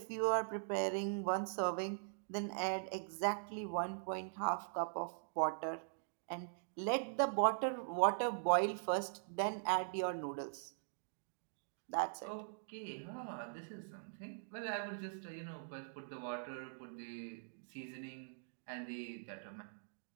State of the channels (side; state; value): left; silent; digital silence